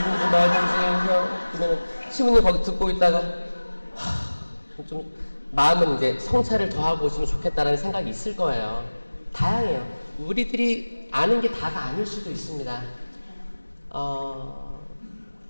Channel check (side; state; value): both; inverted; correlation -1.00